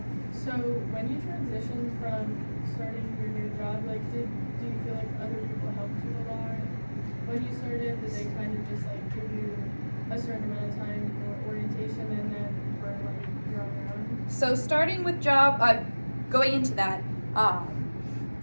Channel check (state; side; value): inverted; both; correlation -1.00